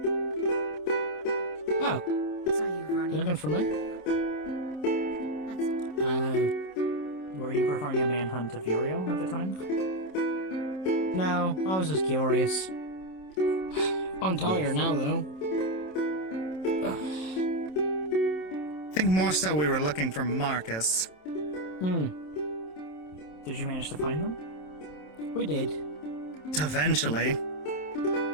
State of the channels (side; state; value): right; late; 27 ms